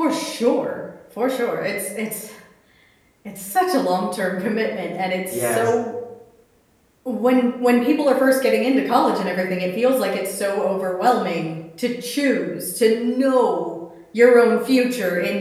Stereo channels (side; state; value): both; identical; correlation 1.00